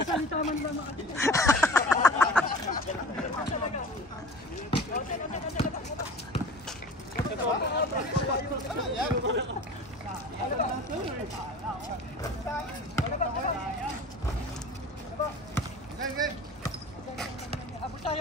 man lang. Abot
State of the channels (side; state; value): both; normal; correlation 0.39